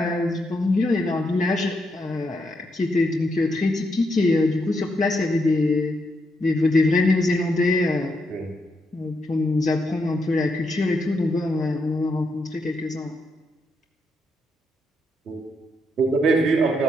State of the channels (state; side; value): normal; both; correlation 0.80